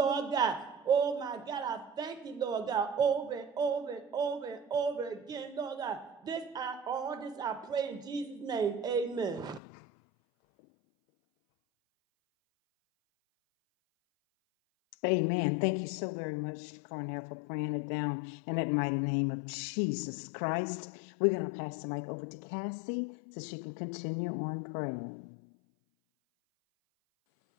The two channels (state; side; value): drops out; right; at 9.6 s